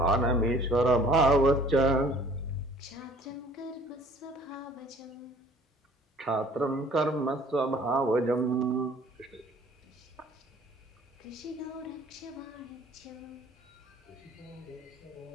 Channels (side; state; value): both; normal; correlation 0.53